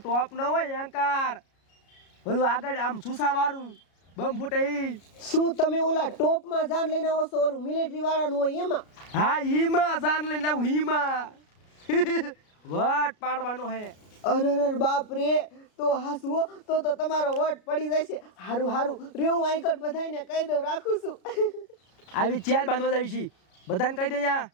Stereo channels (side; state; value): right; late; 33 ms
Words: ટોપ ન હોય એન્કાર, ઓલું આગળ આમ સુસા વાળું બમ ફૂટે. શું તમે ઓલા ટોપ માં જાન લઈને આવો છો? ઓલું મિલિટરી વાળાનું હોય એમાં? હા ઈમાં જાન લઈને આવું. ઈમાં વટ પાડવાનો હે. અરે બાપ રે, તો હાસવો તો તમારો વટ પડી જશે. હારું રે, હું આઈકડ બધાને કહી દઉં, રાખું છું. આવી ચાલ બાંધવા જાવી છી, બધાને કહી દે.